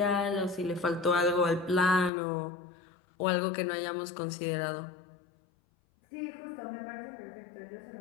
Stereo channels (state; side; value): drops out; right; at 2.1 s